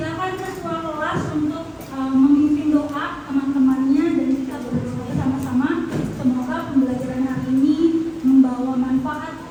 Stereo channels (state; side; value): identical; both; correlation 1.00